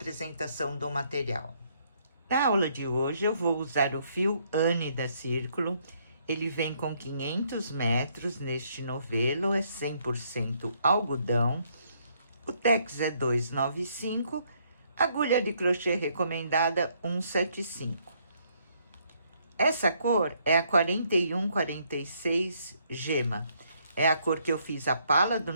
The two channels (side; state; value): both; inverted; correlation -0.70